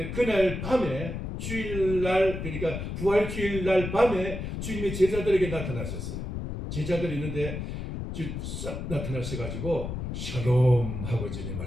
그날 밤에 주일날, 그러니까 부활주일날 밤에 주님이 제자들에게 나타나셨어요. 제자들이 있는데 싹 나타나셔가지고 샬롬 하고 주님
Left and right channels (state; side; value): noise; left; rumble, 5 dB below the sound